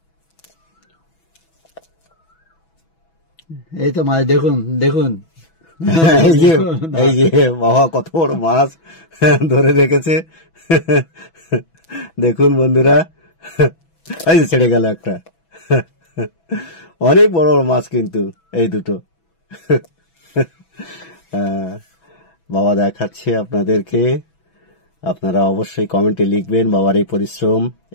এই তো মাছ দেখুন, দেখুন এই যে বাবা কত বড় মাছ ধরে রেখেছে। দেখুন বন্ধুরা, এই যে ছেড়ে গেল একটা। অনেক বড় বড় মাছ কিন্তু এই দুটো। বাবা দেখাচ্ছে আপনাদেরকে। আপনারা অবশ্যই কমেন্টে লিখবেন বাবার এই পরিশ্রম,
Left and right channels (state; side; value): late; right; 6.1 ms